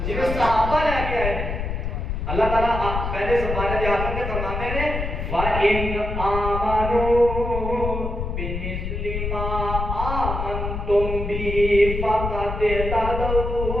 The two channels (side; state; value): left; noise; rumble, 3 dB below the sound